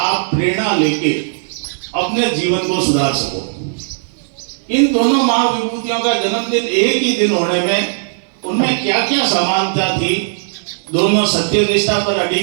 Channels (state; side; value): silent; left; digital silence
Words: प्रेरणा लेके अपने जीवन को सुधार सको। इन दोनों महाविभूतियों का जन्मदिन एक ही दिन होने में उनमें क्या क्या समानता थी। दोनों सत्यनिष्ठा पर